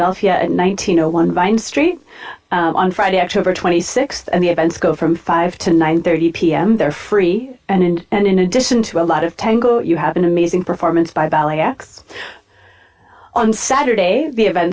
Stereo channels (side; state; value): both; identical; correlation 1.00